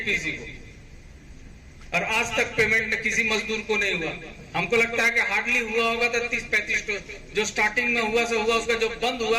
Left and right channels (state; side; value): identical; both; correlation 1.00